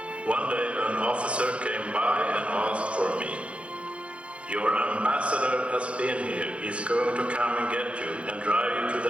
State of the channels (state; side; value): late; left; 0.061 ms